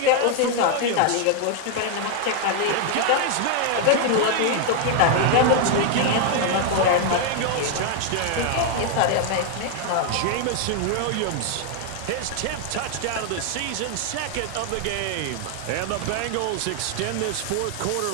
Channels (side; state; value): both; different; correlation 0.00